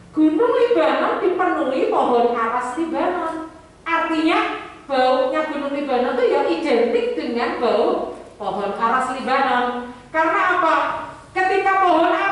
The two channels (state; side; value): identical; both; correlation 1.00